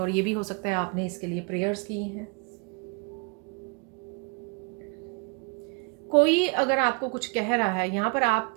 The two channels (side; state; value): left; quieter; 32.1 dB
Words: ये भी हो सकता है आपने इसके लिए प्रेयर्स की हैं। कोई अगर आपको कुछ कह रहा है यहाँ पर,